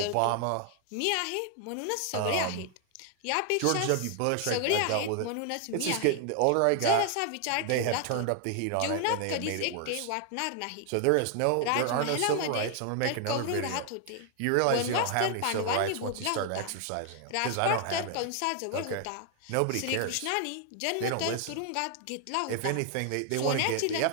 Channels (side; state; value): both; different; correlation 0.00